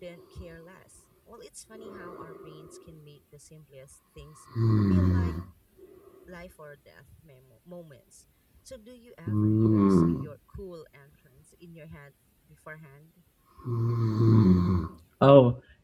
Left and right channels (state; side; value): identical; both; correlation 1.00